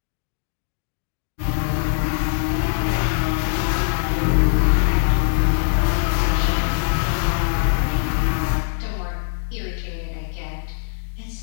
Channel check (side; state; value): right; silent; digital silence